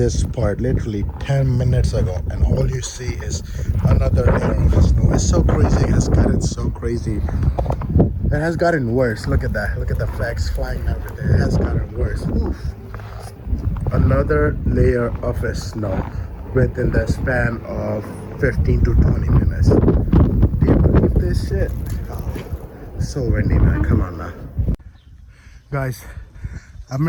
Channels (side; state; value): both; identical; correlation 1.00